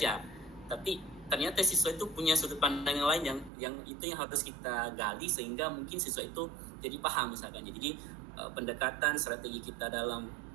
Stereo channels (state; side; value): drops out; left; at 3.5 s